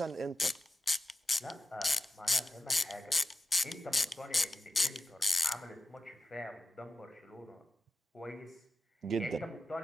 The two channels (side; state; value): both; normal; correlation 0.89